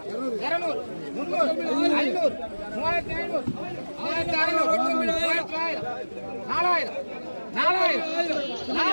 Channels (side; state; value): both; inverted; correlation -1.00